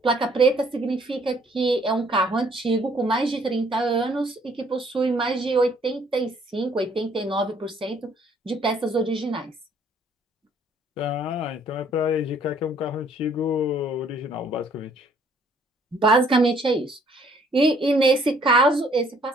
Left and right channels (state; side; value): normal; both; correlation 0.62